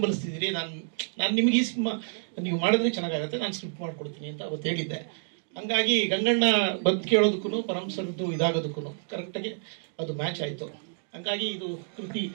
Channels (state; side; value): silent; left; digital silence